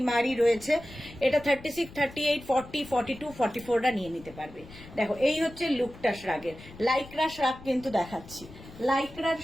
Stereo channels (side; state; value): left; noise; rumble, 18 dB below the sound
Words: রয়েছে। এটা 36, 38, 40, 42, 44টা নিয়ে নিতে পারবে। দেখো এই হচ্ছে লুকটা শ্রাগের। লাইক্রা শ্রাগ কিন্তু দেখাচ্ছি, লাইক্রার